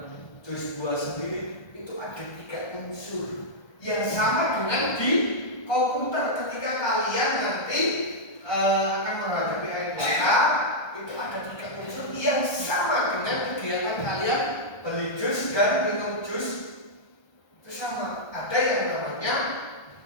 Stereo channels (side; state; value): right; late; 1.3 ms